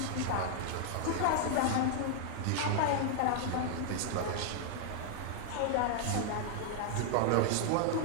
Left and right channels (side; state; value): both; different; correlation 0.00